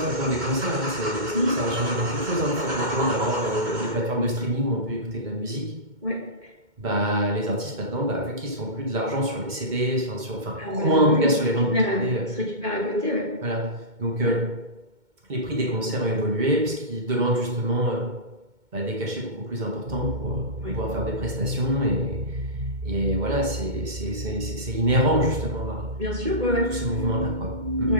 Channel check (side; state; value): left; late; 2.2 ms